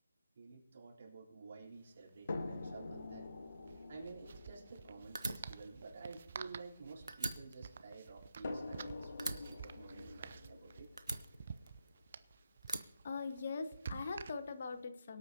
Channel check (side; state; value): both; inverted; correlation -0.84